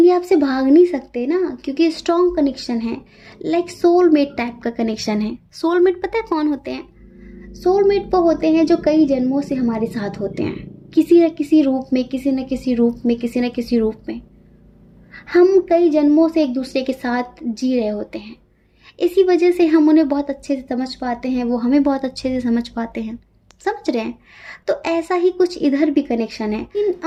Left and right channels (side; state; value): both; identical; correlation 1.00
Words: ये आपसे भाग नहीं सकते ना, क्योंकि स्ट्रॉन्ग कनेक्शन है, लाइक सोलमेट टाइप का कनेक्शन है। सोलमेट पता है कौन होते हैं? सोलमेट वो होते हैं जो कई जन्मों से हमारे साथ होते हैं, किसी न किसी रूप में, किसी न किसी रूप में हम कई जन्मों से एक दूसरे के साथ जी रहे होते हैं। इसी वजह से हम उन्हें बहुत अच्छे से समझ पाते हैं, वो हमें बहुत अच्छे से समझ पाते हैं। समझ रहे हैं? तो ऐसा ही कुछ इधर भी कनेक्शन है।